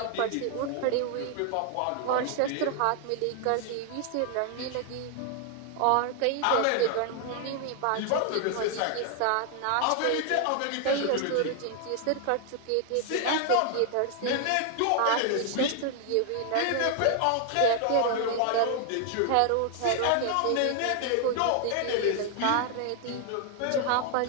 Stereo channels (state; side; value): different; both; correlation 0.00